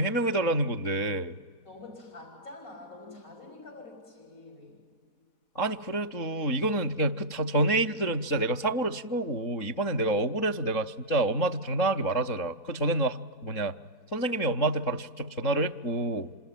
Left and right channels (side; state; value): right; late; 3.7 ms